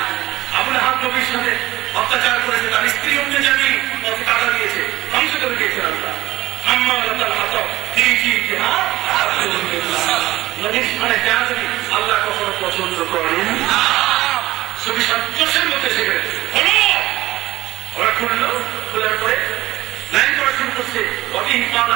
আবুল আহাব নবীর সাথে অত্যাচার করেছে, তার স্ত্রী অন্য জানি পথে কাটা দিয়েছে, ধ্বংস করে দিয়েছে আল্লাহ। নবীর স্থানে বেয়াদবি আল্লাহ কখনো পছন্দ করেন। চোষের মধ্যে সেখানে হলো, ওরা খুললো, খোলার পরে লাইন করা শুরু করছে।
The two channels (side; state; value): left; quieter; 16.5 dB